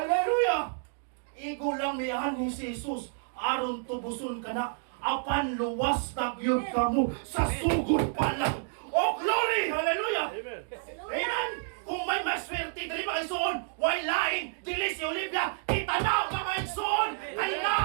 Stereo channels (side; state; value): left; silent; digital silence